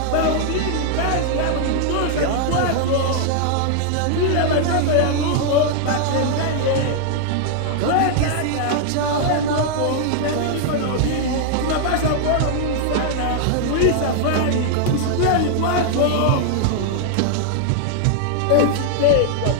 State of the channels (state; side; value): different; both; correlation -0.01